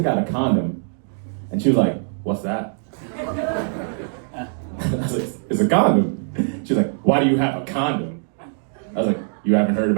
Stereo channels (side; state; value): left; silent; digital silence